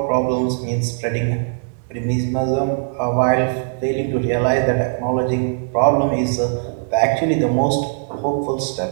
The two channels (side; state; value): left; silent; 66 dB below the other